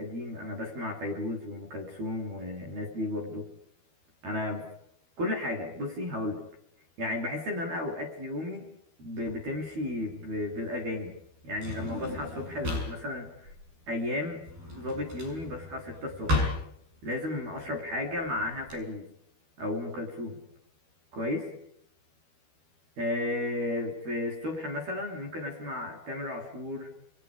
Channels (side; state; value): left; late; 12 ms